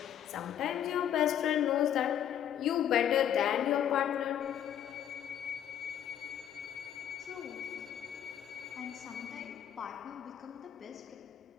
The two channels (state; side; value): quieter; right; 10.0 dB